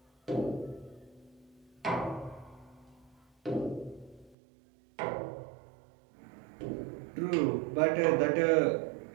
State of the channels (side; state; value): left; drops out; at 4.4 s